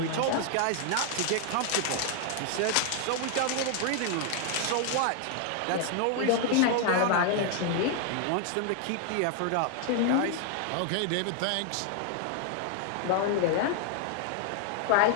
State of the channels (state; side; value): different; both; correlation 0.00